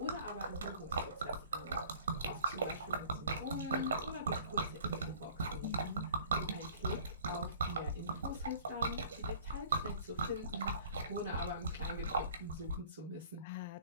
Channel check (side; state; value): both; inverted; correlation -0.49